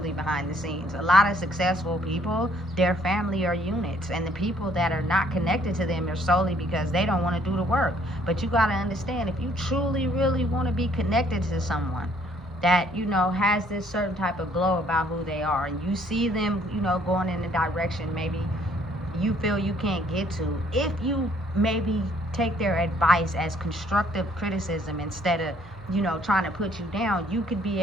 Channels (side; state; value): both; normal; correlation 0.64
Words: behind the scenes. A lot of successful people, their family are units, and the people that are not connected to them are solely because they don't want to do the work. But you got to understand, if you truly really want to be connected to someone that, you know, has this certain type of glow about who they are, and you see them, you know, going in a direction maybe you feel you can't get to, if you maybe take their advice as constructive criticism instead of, you know, trying to put you down, you could be